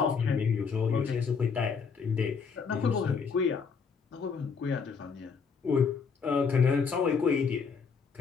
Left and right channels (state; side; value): quieter; right; 5.6 dB